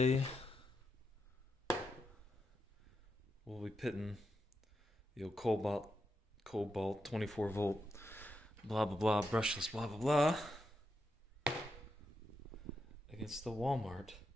we'll be pitting the old Cobalt 24 volt blah blah blah brushless blah blah blah against the Walmart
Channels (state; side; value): normal; both; correlation 0.85